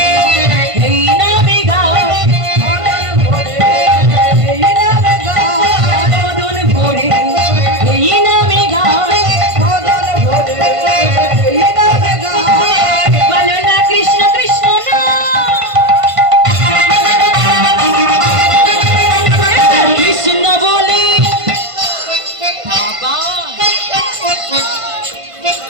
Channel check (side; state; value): left; late; 1.5 ms